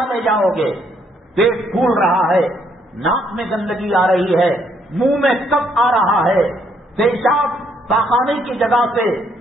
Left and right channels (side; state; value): both; normal; correlation 0.71